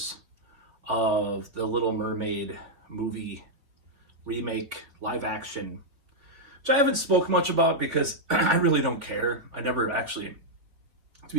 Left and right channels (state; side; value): late; left; 3.5 ms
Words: of the Little Mermaid movie remake, live action, which I haven't spoke much about because I really don't care. I never actually, to